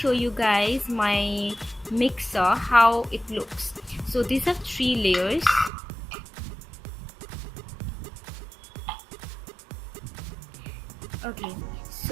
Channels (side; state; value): left; drops out; at 5.7 s